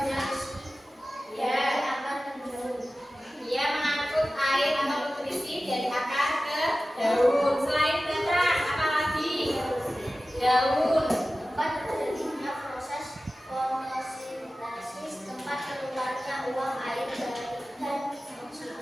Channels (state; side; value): normal; both; correlation 0.95